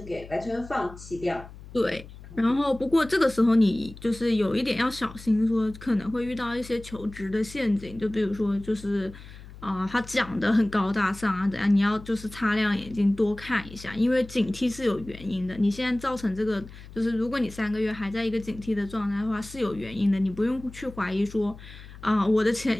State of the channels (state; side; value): noise; left; hum, 17 dB below the sound